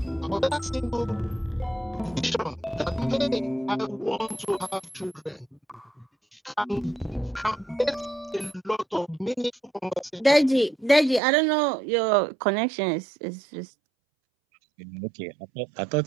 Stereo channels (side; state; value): left; drops out; at 11.2 s